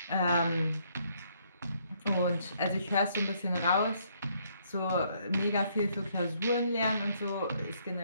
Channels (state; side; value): inverted; both; correlation -0.69